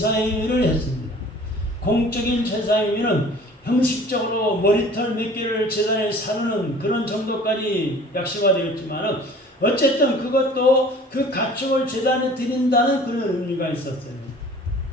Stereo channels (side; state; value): both; normal; correlation 0.48